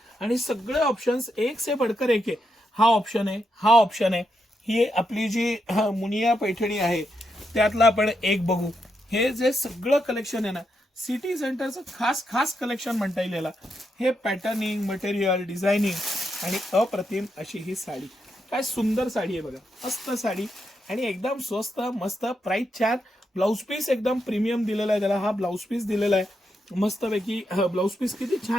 आणि सगळे ऑप्शन्स एक से बढ़कर एक आहे। हा ऑप्शन आहे, हा ऑप्शन आहे, ही आपली जी मुनिया पैठणी आहे त्यातला आपण एक बघू। हे जे सगळं कलेक्शन आहे ना, सिटी सेंटरचं खास खास कलेक्शन म्हणता येईल याला। हे पॅटर्निंग, मटेरियल, डिझायनिंग आणि अप्रतिम अशी ही साडी। काय सुंदर साडी आहे बघा, मस्त साडी आणि एकदम स्वस्त, मस्त प्राइस छान। ब्लाउज पीस एकदम प्रीमियम दिलेला आहे त्याला, हा ब्लाउज पीस दिलेला आहे मस्तपैकी। ब्लाउज पीस किती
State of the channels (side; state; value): both; normal; correlation 0.83